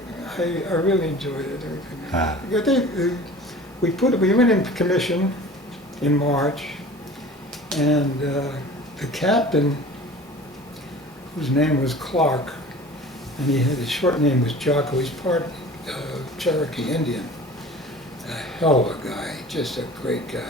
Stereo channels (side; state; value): both; normal; correlation 0.42